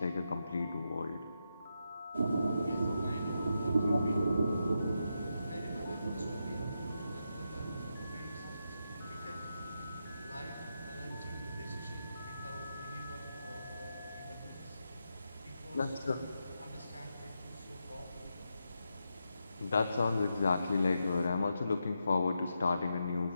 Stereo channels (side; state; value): both; inverted; correlation -0.85